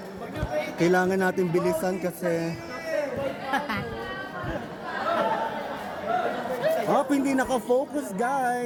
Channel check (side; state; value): both; identical; correlation 1.00